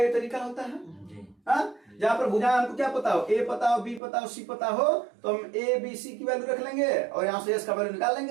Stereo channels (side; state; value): left; drops out; at 4.0 s